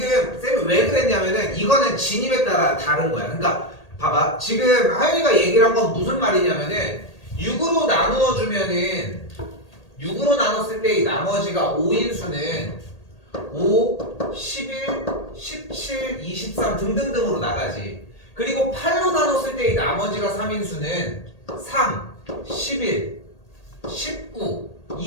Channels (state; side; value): late; right; 1.8 ms